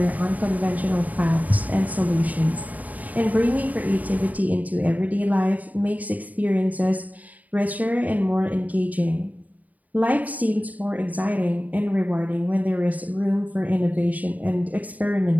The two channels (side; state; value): left; late; 0.075 ms